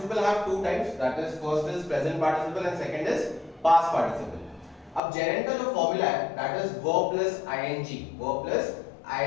have two types, that is first is present participle and second is past participle. अब gerund का जो फॉर्मूला है that is verb plus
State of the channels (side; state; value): right; drops out; at 5.0 s